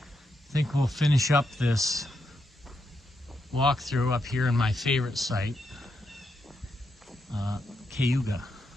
I think we'll finish up this walkthrough up here in my favorite site, Cayuga.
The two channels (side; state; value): both; normal; correlation 0.82